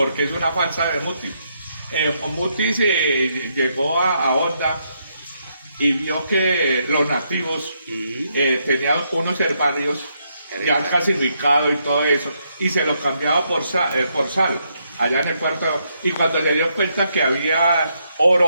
es una falsa de Mutis. Mutis llegó a Honda y vio que los nativos tenían unos herbarios ya clasificados y todo eso, y se los cambiaba por sal, allá en el puerto, y cuando se dio cuenta que había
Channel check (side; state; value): both; inverted; correlation -0.77